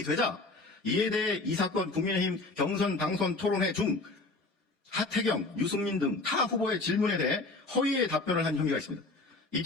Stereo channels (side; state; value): right; quieter; 3.3 dB